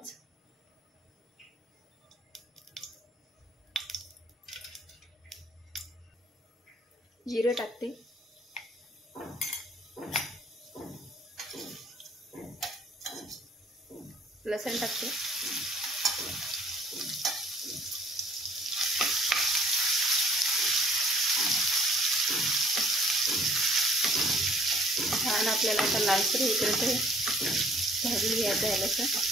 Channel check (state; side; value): normal; both; correlation 0.58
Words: जिरे टाकते, लसूण टाकते, छान आपल्याला आता लालसर होईपर्यंत भाजून घ्यायचं आहे लसूण।